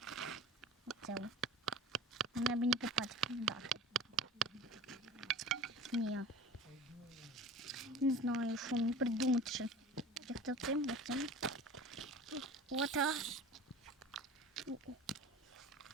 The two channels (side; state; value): both; normal; correlation 0.38